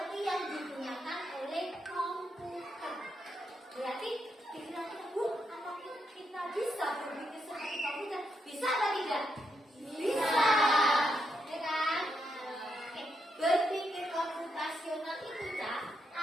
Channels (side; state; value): both; normal; correlation 0.81